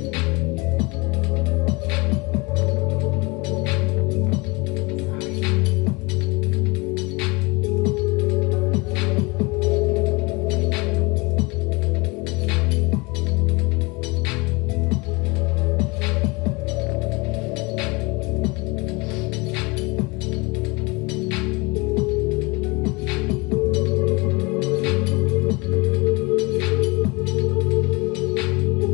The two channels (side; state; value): right; quieter; 26.2 dB